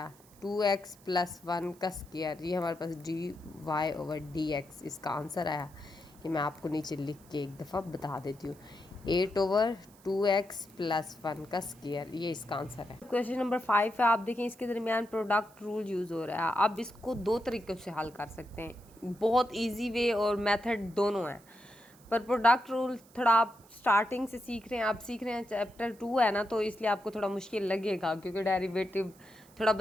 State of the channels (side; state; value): right; noise; hiss, 27 dB below the sound